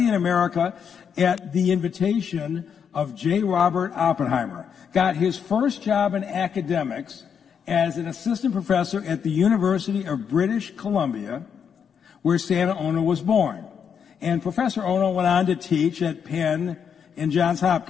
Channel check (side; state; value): right; quieter; 7.3 dB